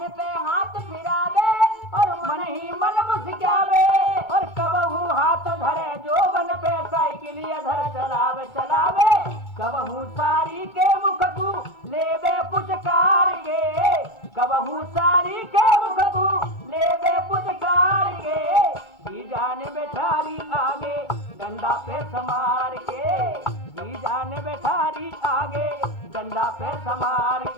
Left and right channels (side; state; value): right; late; 2.2 ms